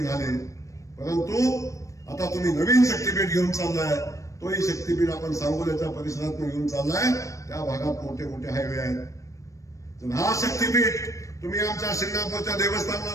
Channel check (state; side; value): late; right; 0.15 ms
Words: परंतु आता तुम्ही नवीन शक्तीपीठ घेऊन चाललाय, तोही शक्तीपीठ आपण सांगोल्याच्या परिसरात घेऊन चाललाय. त्या भागात मोठे मोठे हायवे आहेत. तर हा शक्तीपीठ तुम्ही आमच्या शिंगणापूरच्या